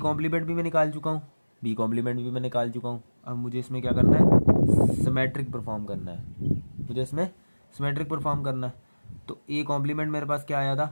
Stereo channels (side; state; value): both; inverted; correlation -1.00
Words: भी मैं निकाल चुका हूँ, बी कॉम्प्लीमेंट भी मैं निकाल चुका हूँ। अब मुझे इसमें क्या करना है, सिमेट्रिक परफॉर्म करना है, मुझे इसमें सिमेट्रिक परफॉर्म करना है। तो ए कॉम्प्लीमेंट मेरे पास क्या आया था,